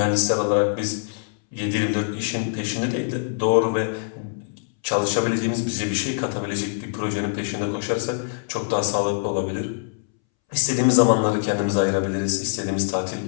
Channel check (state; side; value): silent; right; 63 dB below the other